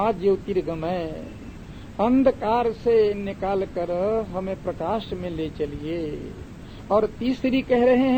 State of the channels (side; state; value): both; identical; correlation 1.00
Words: ज्योतिर्गमय। अंधकार से निकाल कर हमें प्रकाश में ले चलिए। और तीसरी कह रहे